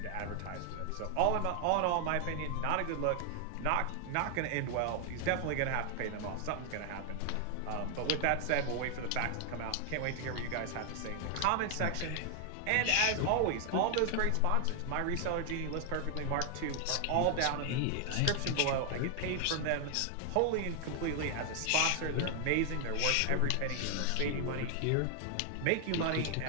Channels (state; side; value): different; both; correlation 0.00